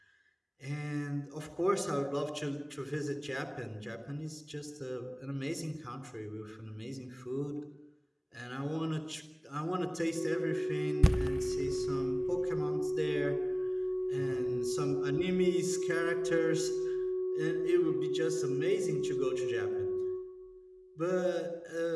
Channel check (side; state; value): both; identical; correlation 1.00